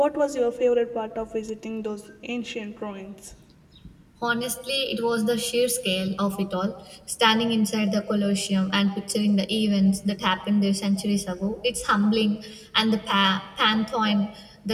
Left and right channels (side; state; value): both; identical; correlation 1.00